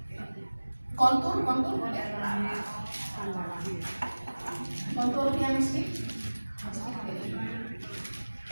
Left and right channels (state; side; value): inverted; both; correlation -1.00